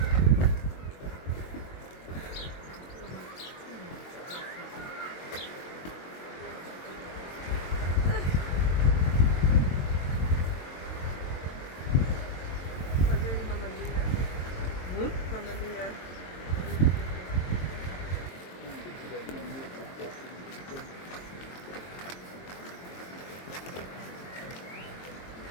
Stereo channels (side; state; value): right; late; 22 ms